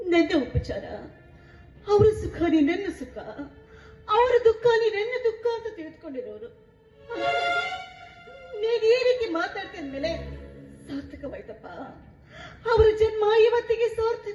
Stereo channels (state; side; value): identical; both; correlation 1.00